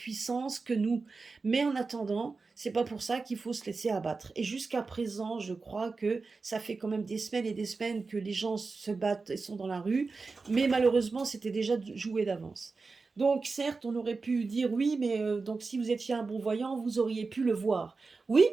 que nous. Mais en attendant, c'est pas pour ça qu'il faut se laisser abattre. Et jusqu'à présent, je crois que ça fait quand même des semaines et des semaines que les gens se battent et sont dans la rue, mais malheureusement, c'était déjà joué d'avance. Donc certes, on aurait pu dire: «Oui, mais donc si vous étiez un bon voyant, vous auriez pu le voir». Oui,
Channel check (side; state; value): left; quieter; 4.2 dB